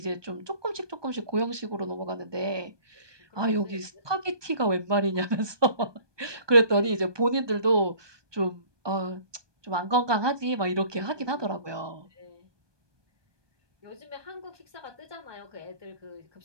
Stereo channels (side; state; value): left; late; 1.2 ms